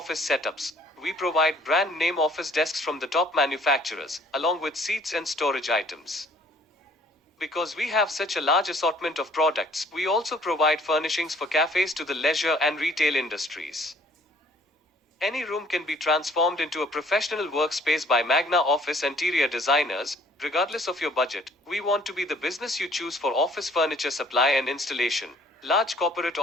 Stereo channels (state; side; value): normal; both; correlation 0.57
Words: setups. We provide brand-name office desks from the top manufacturers, along with seats and storage items. Because we have such a large assortment of products, we also provide furnishings for cafes to the leisure and retail industries. Any room can be transformed into a professional workspace by Magnaa Office interior designers. Regardless of your budget, we want to be the business you choose for office furniture supply and installation. Large corporate